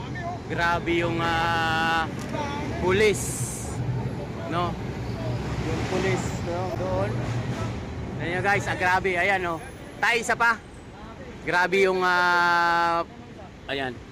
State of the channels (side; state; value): both; identical; correlation 1.00